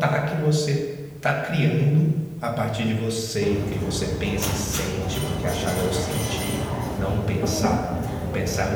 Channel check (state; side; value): identical; both; correlation 1.00